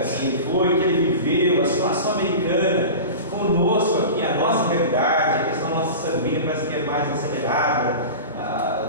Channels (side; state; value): both; inverted; correlation -0.32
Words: que ele foi, que ele viveu, a situação americana, conosco aqui, a nossa realidade, a questão da nossa sanguínea parece que é mais acelerada,